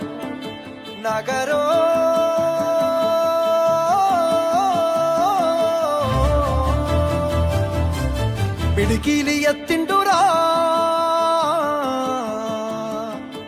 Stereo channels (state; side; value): identical; both; correlation 1.00